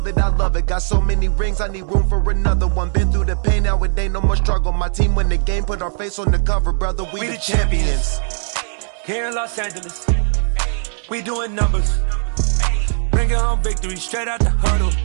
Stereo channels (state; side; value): silent; left; 67 dB below the other